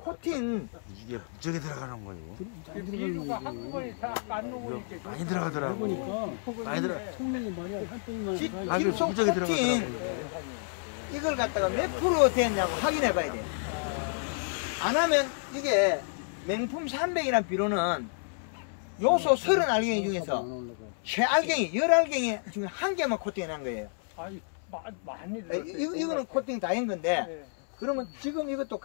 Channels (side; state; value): right; silent; 58 dB below the other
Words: 이게 무지하게 들어가는 거예요. 많이 들어가는 비료가 거지. 한꺼번에 다안 녹으니까. 많이 들어가더라고. 해보니까 많이 들어. 통영이 말이야 한 덩이만 질- 가. 아주 질소 무지하게 코팅 들어가더라고. 이걸 갖다가 몇 프로 됐냐고 확인해봐야 돼요. 안 하면 이게 명품 300이라는 비료는 요소 30알갱이 중에서 최알갱이 10알갱이 중에 한 개만 코팅해놓은 거예요. 아니, 많이 들어. 이거는 코팅 다 한 건데 예. 그러면 지금 이것도